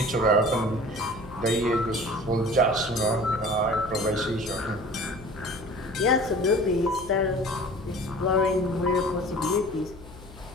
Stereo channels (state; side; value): noise; left; hum, 18 dB below the sound